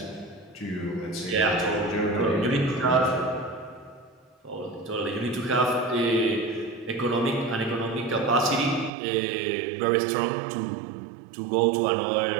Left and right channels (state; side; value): drops out; left; at 8.9 s